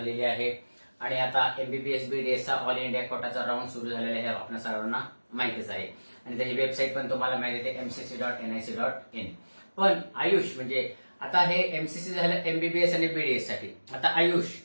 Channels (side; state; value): both; inverted; correlation -1.00